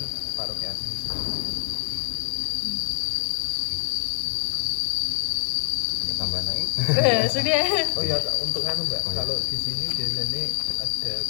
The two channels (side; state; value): right; silent; digital silence